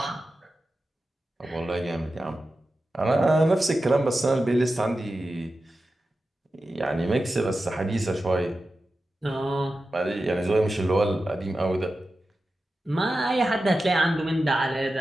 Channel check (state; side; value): normal; both; correlation 0.92